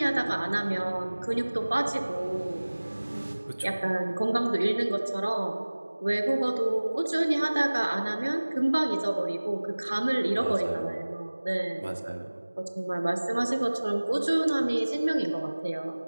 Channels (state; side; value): inverted; both; correlation -1.00